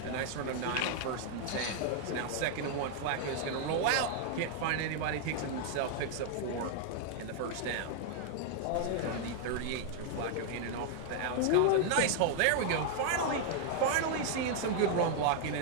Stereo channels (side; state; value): both; different; correlation 0.00